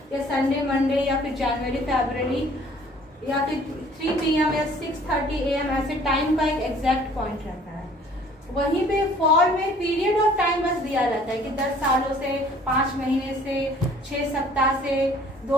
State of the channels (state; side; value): normal; both; correlation 0.54